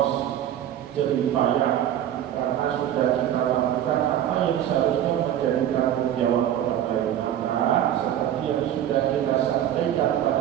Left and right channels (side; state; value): left; quieter; 11.1 dB